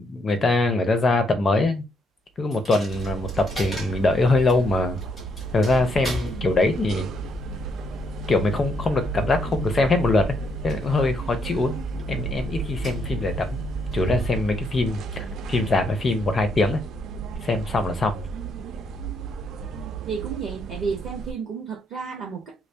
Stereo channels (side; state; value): both; normal; correlation 0.74